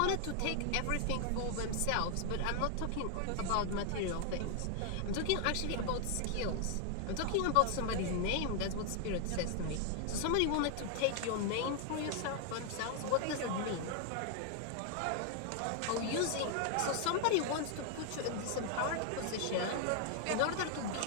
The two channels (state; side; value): different; both; correlation 0.00